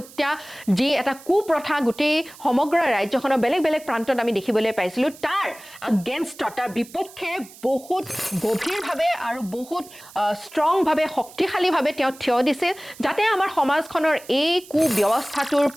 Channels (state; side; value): noise; right; hiss, 20 dB below the sound